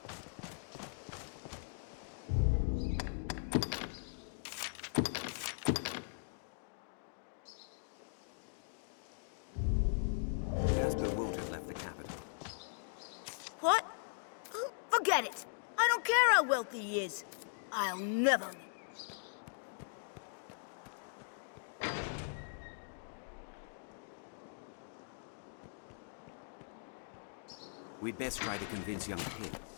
Jasper won't have left the capital. What? Forget it. I don't care how wealthy he is. I'll never. We'd best try to convince young Puits.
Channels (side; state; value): right; silent; digital silence